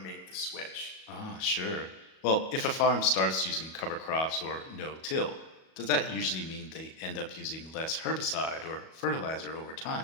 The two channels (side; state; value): right; late; 37 ms